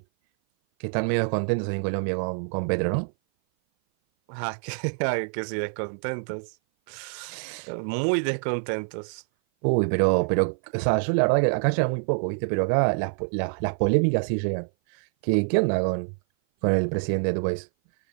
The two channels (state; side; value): silent; left; 56 dB below the other